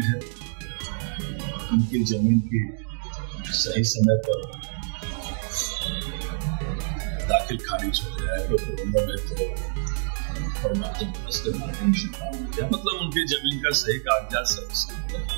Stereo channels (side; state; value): left; silent; 61 dB below the other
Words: है, उनकी जमीन की सही समय पर दाखिल खारिज हो जाए तो मतलब उनकी जमीन का सही कागजात